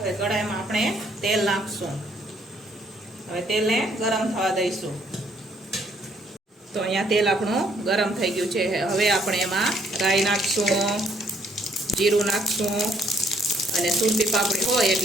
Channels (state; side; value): normal; both; correlation 0.67